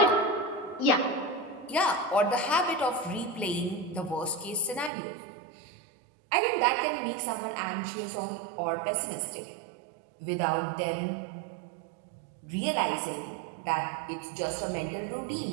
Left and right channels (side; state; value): left; drops out; at 4.9 s